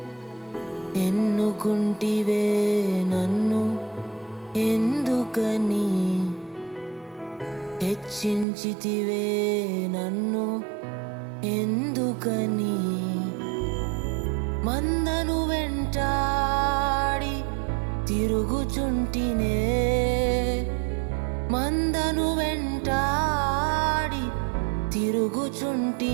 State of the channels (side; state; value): left; drops out; at 8.5 s